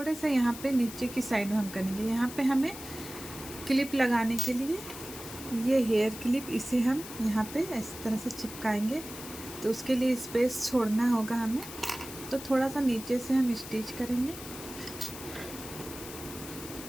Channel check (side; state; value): left; noise; hiss, 12 dB below the sound